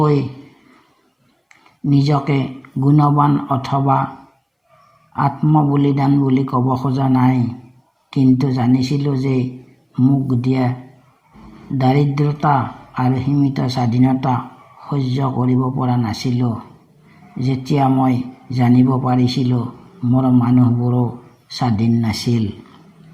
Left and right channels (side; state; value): both; identical; correlation 1.00